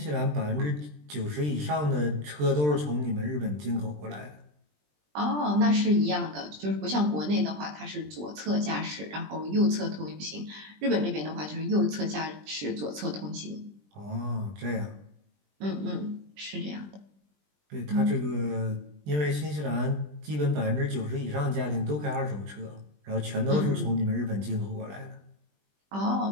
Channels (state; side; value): late; left; 20 ms